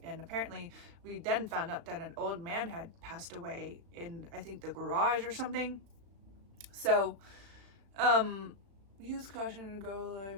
And apparently we then found out that an old man had passed away in, I think, the garage or something. So, use caution to go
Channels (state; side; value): late; left; 36 ms